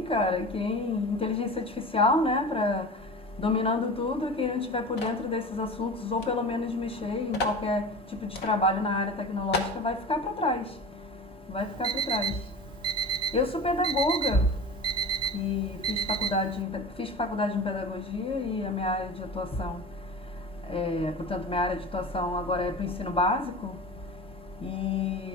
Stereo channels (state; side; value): normal; both; correlation 0.33